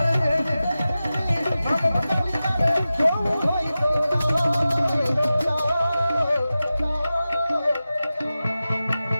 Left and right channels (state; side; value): inverted; both; correlation -0.94